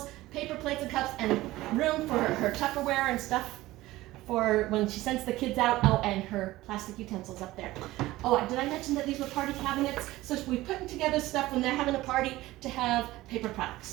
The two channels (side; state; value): left; quieter; 17.5 dB